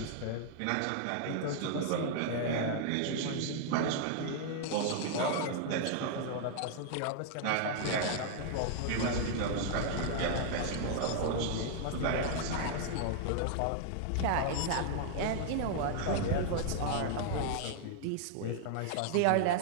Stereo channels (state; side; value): different; both; correlation -0.01